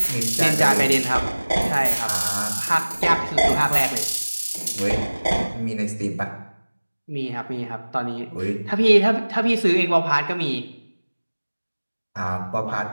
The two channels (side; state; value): both; inverted; correlation -1.00